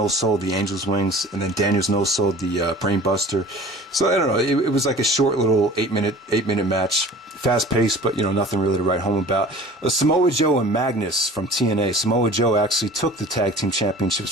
the Angel's Wings, and then Daniels no-sold the Brainbuster. So, I don't know, it was like a short little 8-minute match. Fast-paced, but, nothing really to write home about. Samoa Joe and Magnus from TNA. Samoa Joe actually took the tag team championships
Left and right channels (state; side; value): normal; both; correlation 0.44